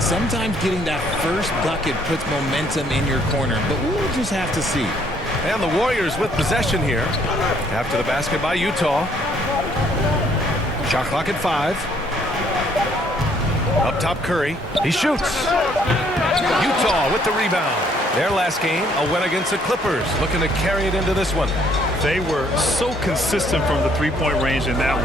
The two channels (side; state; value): both; normal; correlation 0.65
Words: sometimes getting that first bucket puts momentum in your corner, but we'll just have to see. And the Warriors with possession here. After the basket by Utah. Shot clock at 5. Up top, Curry. He shoots. Utah with the rebound. Their last game, a win against the Clippers. Looking to carry it into this one. They were so consistent from the three-point range in that